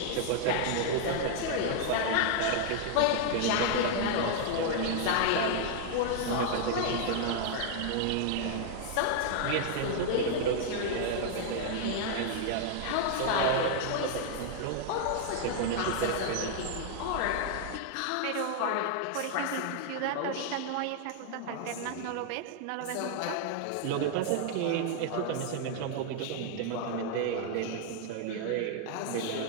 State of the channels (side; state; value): both; different; correlation 0.00